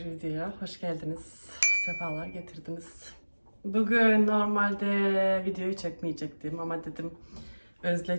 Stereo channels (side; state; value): both; inverted; correlation -1.00